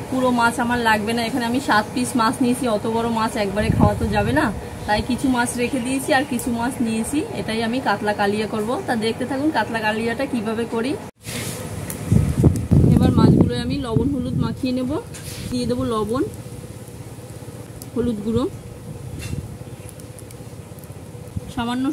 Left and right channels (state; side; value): identical; both; correlation 1.00